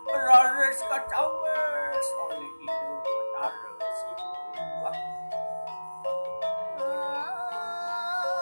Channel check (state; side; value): inverted; both; correlation -1.00